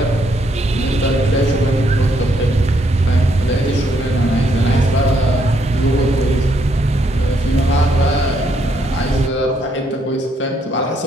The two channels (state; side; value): normal; both; correlation 0.73